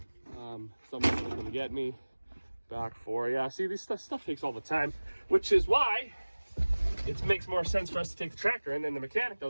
Someone's gonna come get me, back 4. Yeah, see, this stuff takes all the time, which is why it makes more sense for us to take the tractor, and then the mechanic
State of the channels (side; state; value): both; inverted; correlation -1.00